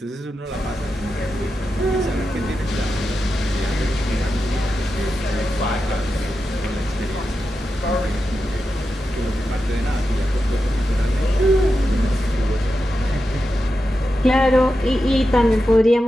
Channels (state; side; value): normal; both; correlation 0.89